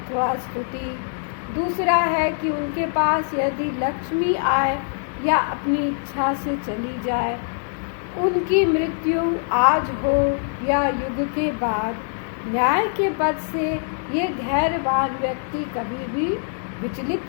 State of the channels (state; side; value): silent; right; digital silence